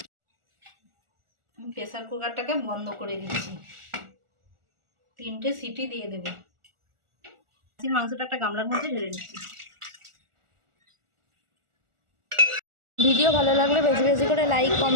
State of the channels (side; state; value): left; late; 1.4 ms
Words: প্রেসার কুকারটাকে বন্ধ করে দিচ্ছি। 3টে সিটি দিয়ে দেব। মাংসটা একটা গামলার মধ্যে ঢেলে নিচ্ছি। ভিডিও ভালো লাগলে বেশি বেশি করে লাইক,